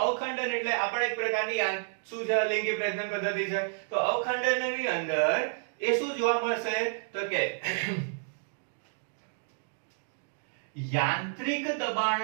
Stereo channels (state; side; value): silent; left; digital silence